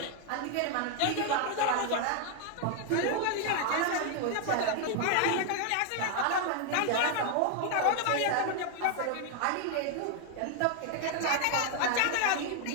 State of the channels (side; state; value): both; different; correlation 0.00